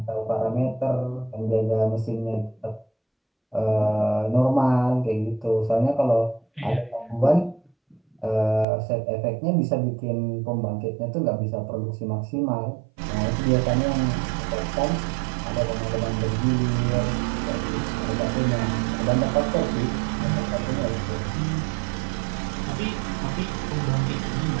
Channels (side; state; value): left; drops out; at 8.7 s